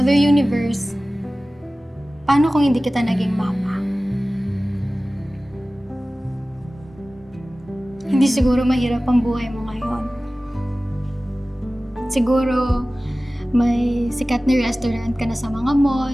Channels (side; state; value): both; normal; correlation 0.97